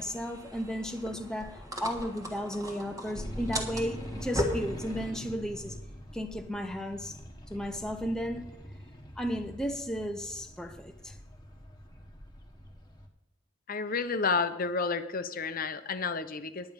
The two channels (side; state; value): both; normal; correlation 0.49